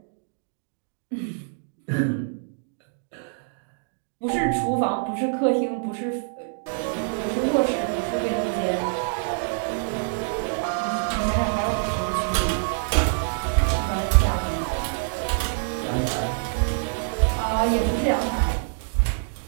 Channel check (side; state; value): left; silent; digital silence